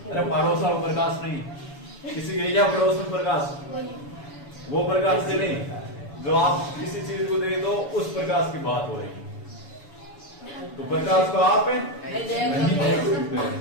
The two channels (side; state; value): right; late; 7.0 ms